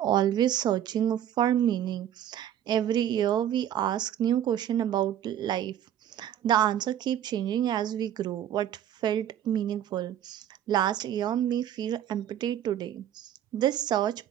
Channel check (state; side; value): quieter; left; 10.7 dB